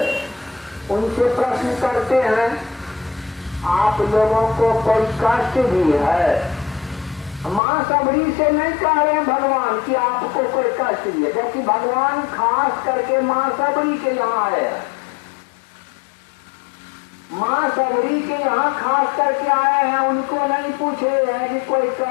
उनसे प्रश्न करते हैं, आप लोगों को कोई कष्ट भी है? मां सबरी से नहीं कह रहे हैं भगवान कि आपको कोई कष्ट भी है, क्योंकि भगवान खास करके मां सबरी के यहाँ आए हैं। मां सबरी के यहाँ खास करके आए हैं, उनको नहीं पूछे हैं कि कोई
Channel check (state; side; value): drops out; right; at 7.6 s